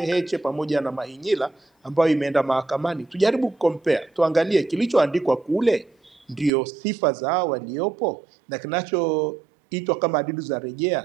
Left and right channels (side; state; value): left; drops out; at 6.5 s